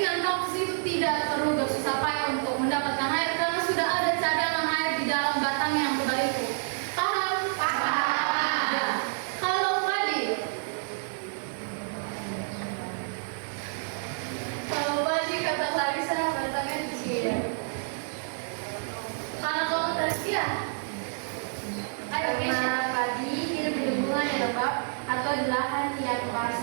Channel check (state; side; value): silent; left; digital silence